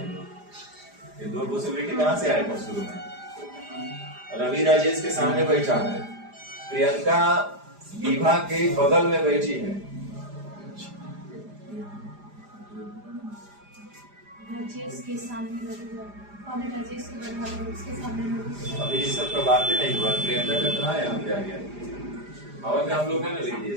हम लोग। ये 2 पॉसिबिलिटी कहाँ से आया था शुरू में? रवि राजेश के सामने बैठा है, प्रियंका विभा के बगल में बैठी है। राजेश के सामने और राजेश के बराबर उसके सामने। अभी इस सब का बात ही नहीं हुआ। प्रियंका का कहाँ है, यहाँ पे आ गया। और में हम लोग है ना लिख दिए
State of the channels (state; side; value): late; left; 4.9 ms